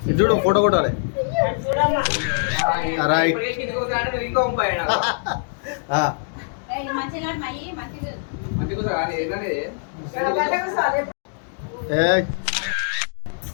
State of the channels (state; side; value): silent; right; 63 dB below the other